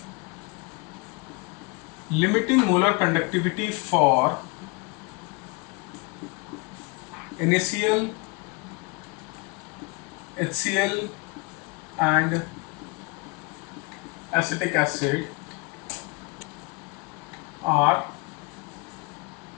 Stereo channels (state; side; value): quieter; right; 28.7 dB